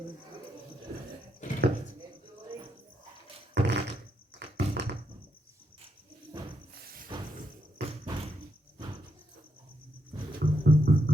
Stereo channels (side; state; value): both; normal; correlation 0.80